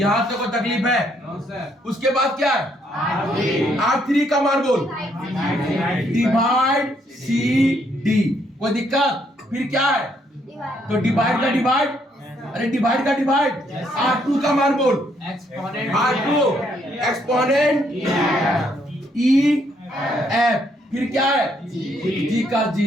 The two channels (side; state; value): both; normal; correlation 0.71